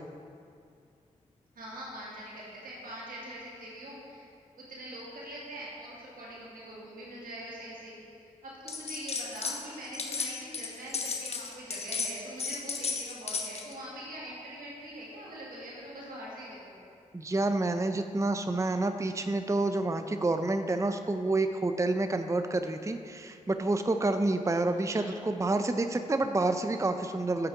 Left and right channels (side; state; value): both; normal; correlation 0.76